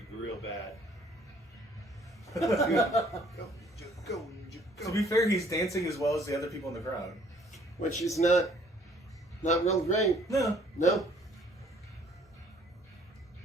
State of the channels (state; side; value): normal; both; correlation 0.60